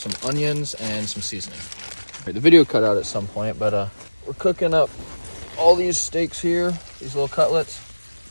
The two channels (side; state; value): both; inverted; correlation -1.00